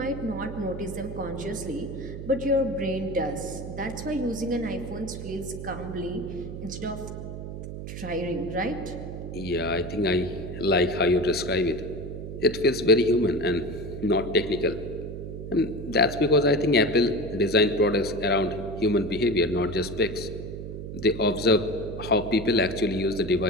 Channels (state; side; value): noise; right; hum, 8 dB below the sound